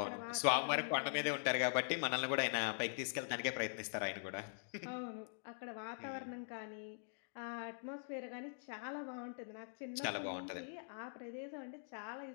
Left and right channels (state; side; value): silent; right; digital silence